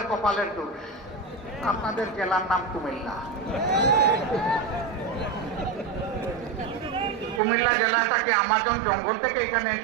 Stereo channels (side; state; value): left; drops out; at 7.4 s